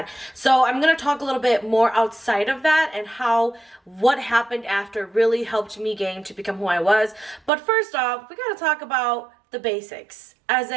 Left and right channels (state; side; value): drops out; left; at 7.5 s